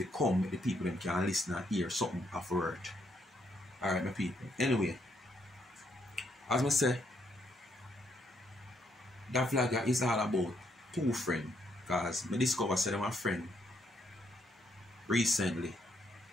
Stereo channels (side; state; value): both; normal; correlation 0.74